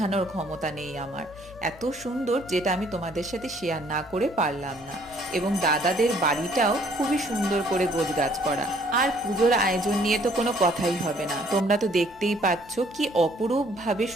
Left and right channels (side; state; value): left; noise; hum, 25 dB below the sound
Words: ক্ষমতা নেই আমার। এত সুন্দর যেটা আমি তোমাদের সাথে শেয়ার না করে পারলাম না। এবং দাদাদের বাড়িটাও খুবই সুন্দর করে গোছগাছ করা। আর পুজোর আয়োজন নিয়ে তো কোনো কথাই হবে না, তোমরা তো দেখতেই পাচ্ছ কি অপরূপ ভাবে